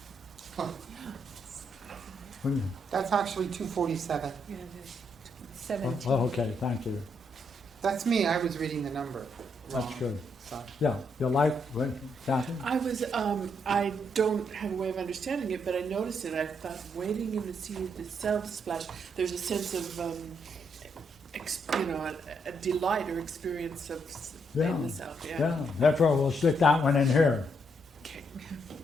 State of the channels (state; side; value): normal; both; correlation 0.76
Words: That's actually 247. Oh, 17. okay, thank you. That's me, I was reading the number wrong. That's good. Sorry. Yeah, you like, what, Kathy? I was, I don't have a way of understanding it, but I noticed it. I thought, wading in the sea, the self splash, there's a sense of, a delight or experience of Yeah. in the self. Yeah. Yeah, therefore we'll stick that one in here, Okay.